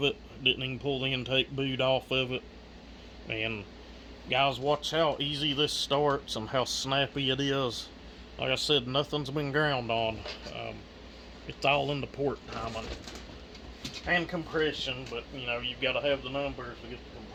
it. Didn't even pull the intake boot off of it. And guys, watch how easy this starts and how snappy it is. Like I said, nothing's been ground on. It's all in the port timing and compression, but you know, you've got to have the numbers to get the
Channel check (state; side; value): identical; both; correlation 1.00